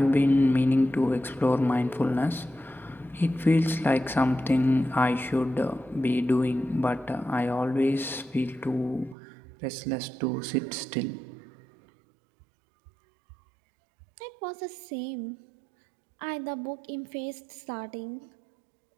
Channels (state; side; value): drops out; left; at 9.2 s